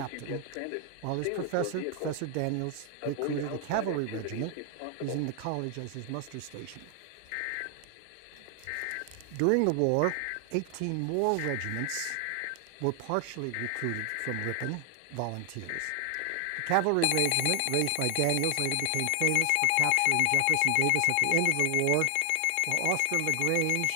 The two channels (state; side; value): different; both; correlation 0.00